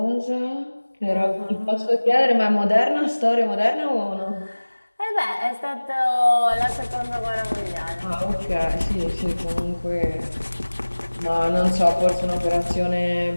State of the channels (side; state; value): both; inverted; correlation -1.00